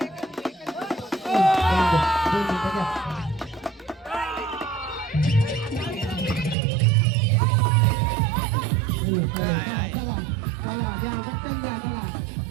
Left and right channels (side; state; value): left; drops out; at 6.6 s